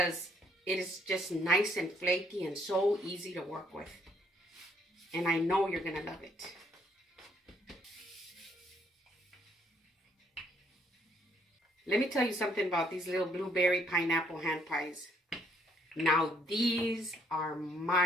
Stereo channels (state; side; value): normal; both; correlation 0.67